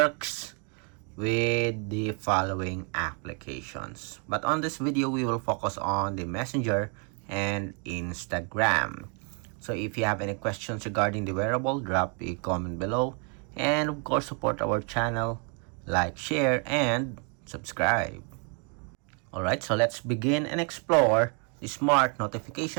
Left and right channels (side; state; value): left; quieter; 37.5 dB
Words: with the following applications. But on this video, we will focus on the Messenger and Instagram. So if you have any questions regarding the wearable, drop a comment below. And of course, support our channel, like, share, and subscribe. Alright, so let's begin and explore the smart